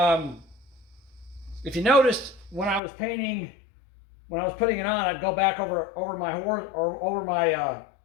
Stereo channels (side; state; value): right; drops out; at 2.8 s